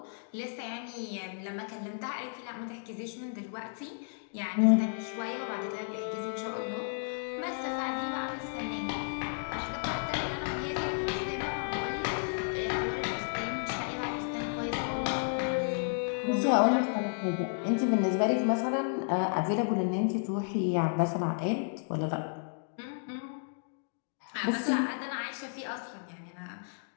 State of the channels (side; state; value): right; silent; digital silence